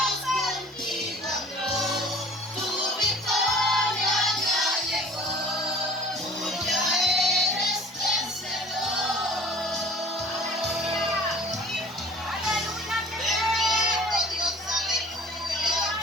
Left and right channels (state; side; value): normal; both; correlation 0.47